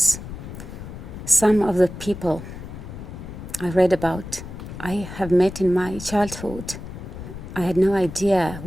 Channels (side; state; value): left; noise; rumble, 11 dB below the sound